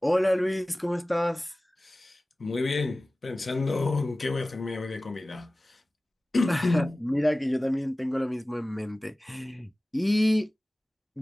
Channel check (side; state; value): both; normal; correlation 0.97